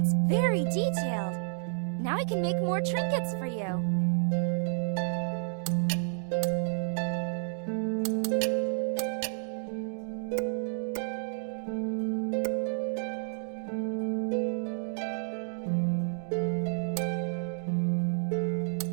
very detailed. Now I can make more trinkets for you.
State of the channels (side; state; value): left; silent; digital silence